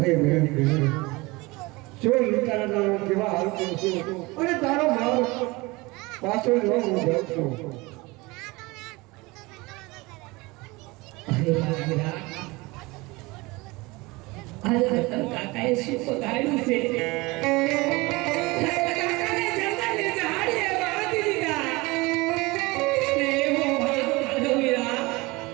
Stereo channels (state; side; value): quieter; left; 23.3 dB